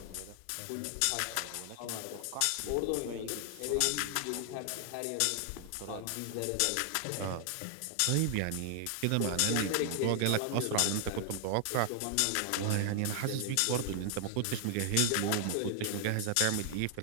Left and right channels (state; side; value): different; both; correlation 0.00